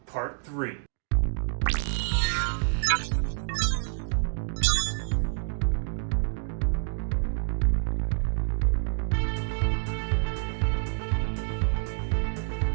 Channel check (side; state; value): left; silent; digital silence